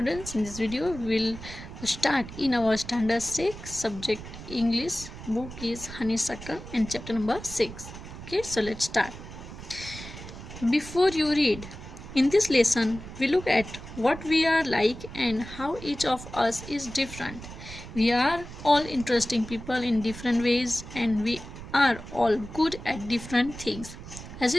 in this video we'll start in our standard 6 subject English. Book is Honeysuckle and chapter number 6. Okay, so let's start. Before you read, in this lesson we look at what we are like and how each of us is different. We are all interesting people in different ways and we are all good at different things. As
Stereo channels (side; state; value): right; noise; rumble, 13 dB below the sound